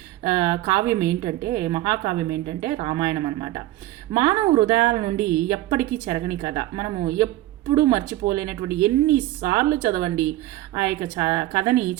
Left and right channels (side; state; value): left; quieter; 16.1 dB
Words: కావ్యం ఏంటంటే, మహాకావ్యం ఏంటంటే రామాయణం అనమాట. మానవ హృదయాల నుండి ఎప్పటికీ చెరగని కథ. మనము ఎప్పుడు మర్చిపోలేనటువంటి, ఎన్నిసార్లు చదవండి ఆ యొక్క కథని